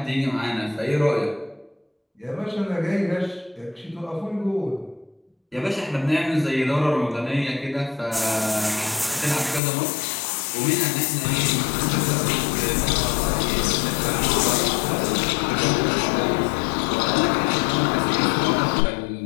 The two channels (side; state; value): right; drops out; at 9.6 s